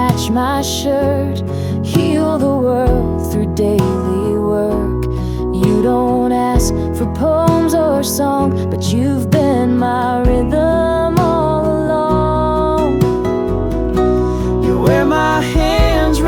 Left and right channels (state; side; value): identical; both; correlation 1.00